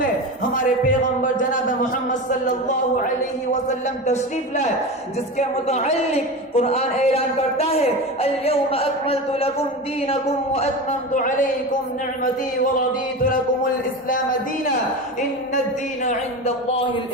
ہمارے پیغمبر جناب محمد صلی اللہ علیہ وسلم تشریف لائے، جس کے متعلق قرآن اعلان کرتا ہے: اليوم اکملت لکم دینکم واتممت علیکم نعمتی ورضیت لکم الاسلام دینا ان الدین عند اللہ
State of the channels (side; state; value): both; normal; correlation 0.25